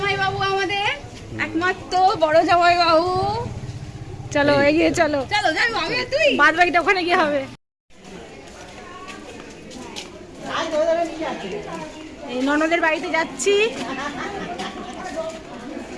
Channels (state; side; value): identical; both; correlation 1.00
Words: বাবু, আমাদের একমাত্র বড় জামাই বাবু। চলো এগিয়ে চলো, চলো যাই আমি আর তুই। বাদ বাকিটা ওখানে গিয়ে হবে। এই ননদের বাড়িতে যাচ্ছি।